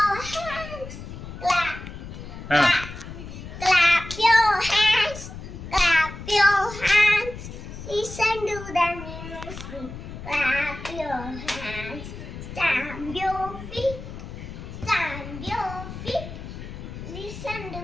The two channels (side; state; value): left; noise; rumble, 11 dB below the sound